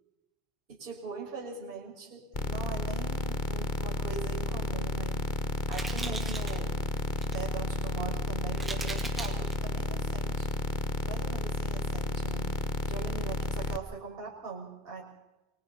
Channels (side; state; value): both; normal; correlation 0.40